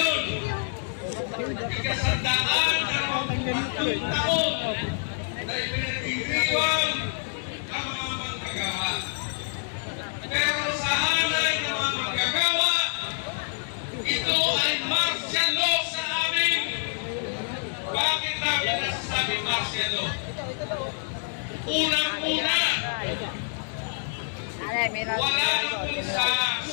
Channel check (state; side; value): silent; right; digital silence